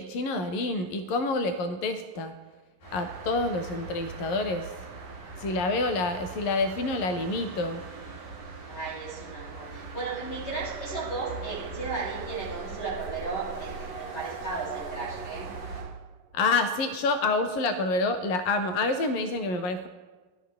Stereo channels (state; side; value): late; right; 11 ms